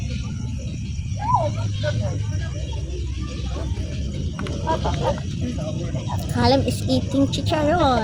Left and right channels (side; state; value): both; identical; correlation 1.00